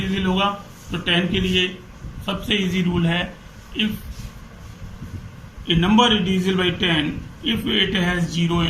होगा? तो 10 के लिए सबसे इजी रूल है if A number is divisible by 10 if it has 0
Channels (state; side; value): identical; both; correlation 1.00